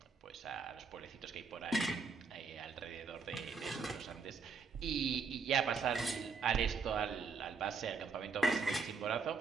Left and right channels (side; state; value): left; quieter; 5.0 dB